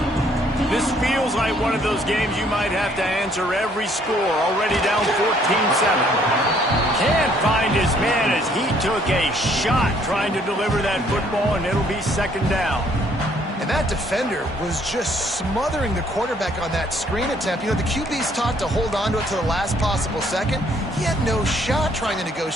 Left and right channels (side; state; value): both; normal; correlation 0.64